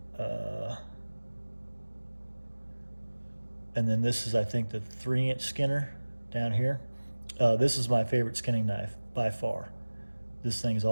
And then this is, I think, the 3-inch skinner down here. This is my favorite skinning knife by far. This thing's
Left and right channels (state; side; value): inverted; both; correlation -1.00